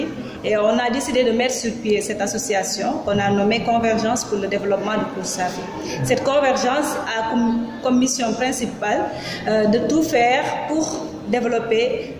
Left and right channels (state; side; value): identical; both; correlation 1.00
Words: et on a décidé de mettre sur pied cette association qu'on a nommée Convergence pour le développement de Koursafi. Cette convergence a comme mission principale de tout faire pour développer